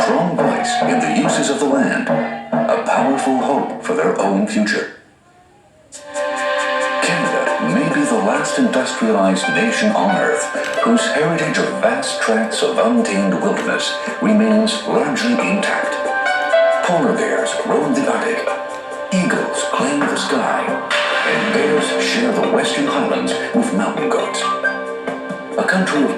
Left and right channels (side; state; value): both; identical; correlation 1.00